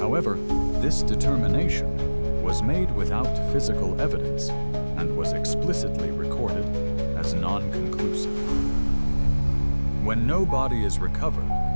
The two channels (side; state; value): both; inverted; correlation -1.00